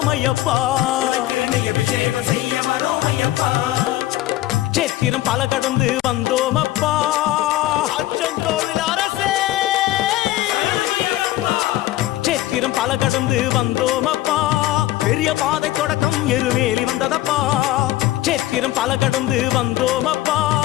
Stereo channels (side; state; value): right; quieter; 15.5 dB